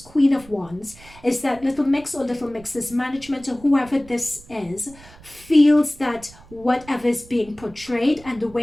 of Wands is that Little Mix or Little Mix's management or whoever this is feels that whatever is being portrayed and the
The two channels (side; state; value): right; noise; rumble, 22 dB below the sound